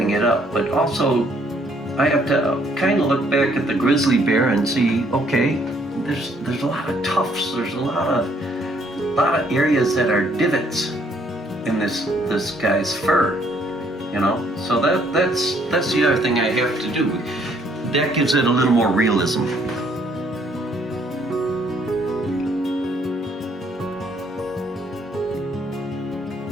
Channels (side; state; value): both; normal; correlation 0.66